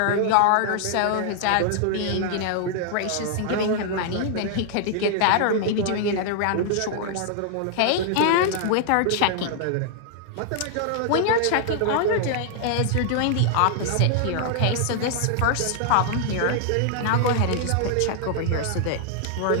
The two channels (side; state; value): both; different; correlation 0.00